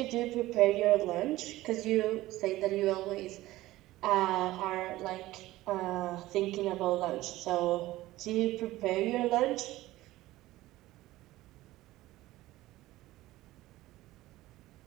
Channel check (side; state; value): left; quieter; 17.0 dB